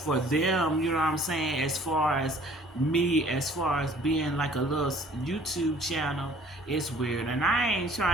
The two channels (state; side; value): normal; both; correlation 0.54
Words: them, you know what I'm saying, as far as me, as far as being like a little YouTube channel, it's weird. And I ain't